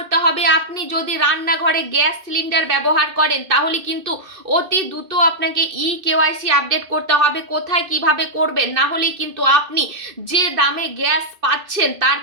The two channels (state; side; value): late; left; 2.6 ms